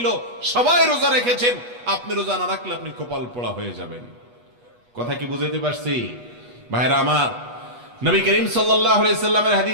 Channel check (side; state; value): left; late; 8.2 ms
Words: সবাই রোজা রেখেছেন। আপনি রোজা না রাখলে আপনি কপাল পোড়া হয়ে যাবেন। কথা কি বুঝতে পারছি? ভাইরা আমার, নবী করিম সাল্লাল্লাহু আলাইহি সাল্লামের